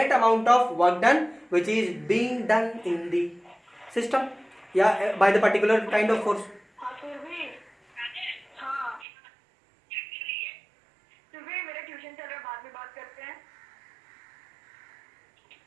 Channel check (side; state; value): left; drops out; at 9.1 s